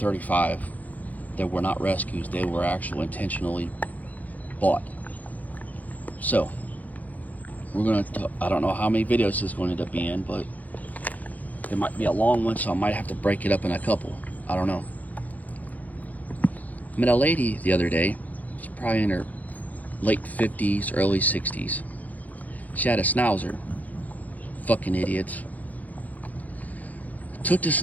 that were not rescues. They were actually intentionally bought. So, I don't know how many videos this is going to end up being, but it might be a long one, so I might have to break it up in a couple. I don't know. I met a lady the other day. She's probably in her late 50s, early 60s. She had a Schnauzer. Fucking idiots. Took the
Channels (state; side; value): late; right; 0.079 ms